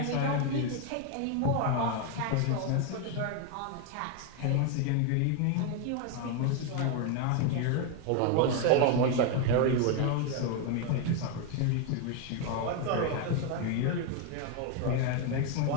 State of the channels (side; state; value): both; different; correlation 0.01